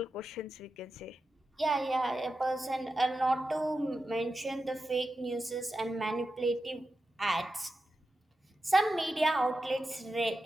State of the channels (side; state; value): both; normal; correlation 0.91